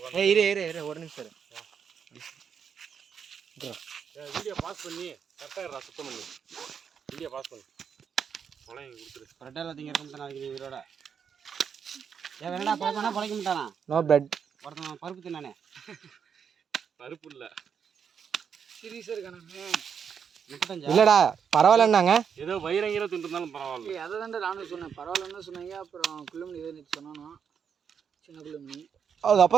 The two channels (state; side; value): quieter; left; 7.2 dB